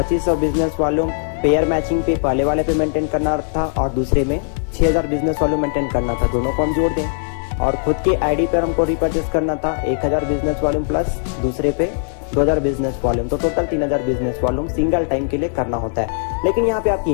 बिजनेस वॉल्यूम पेयर मैचिंग पे पहले वाले पे मेंटेन करना था और दूसरे में 6,000 बिजनेस वॉल्यूम मेंटेन करना था, दोनों को हम जोड़ दें। और खुद के आईडी पर हमको रिपर्चेस करना था 1000 बिजनेस वॉल्यूम प्लस दूसरे पे 2000 बिजनेस वॉल्यूम, तो total 3000 business volume single time के लिए करना होता है। लेकिन यहाँ पे आपकी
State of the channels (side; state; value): right; silent; 66 dB below the other